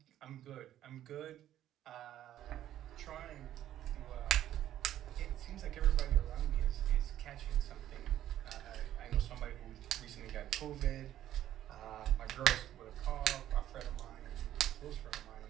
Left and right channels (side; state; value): left; quieter; 12.2 dB